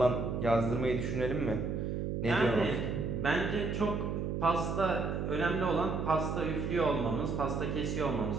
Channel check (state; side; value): noise; right; hum, 1 dB below the sound